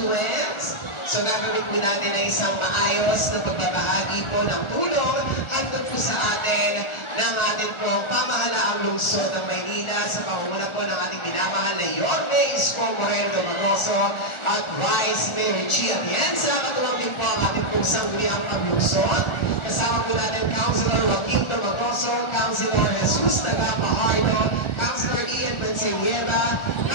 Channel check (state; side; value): late; right; 1.4 ms